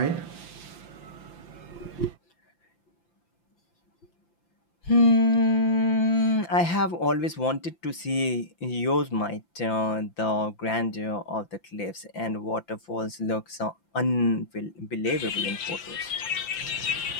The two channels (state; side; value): late; right; 5.8 ms